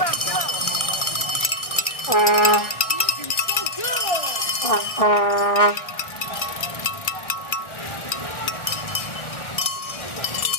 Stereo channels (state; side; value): late; right; 1.6 ms